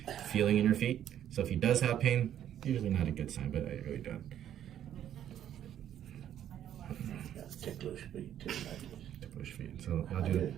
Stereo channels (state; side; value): quieter; left; 10.6 dB